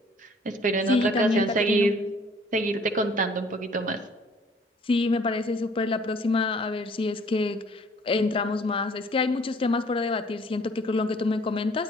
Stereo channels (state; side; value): normal; both; correlation 0.56